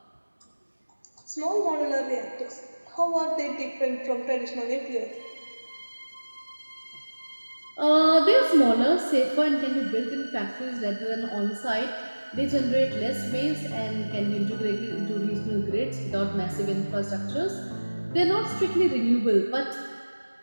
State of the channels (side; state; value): both; inverted; correlation -1.00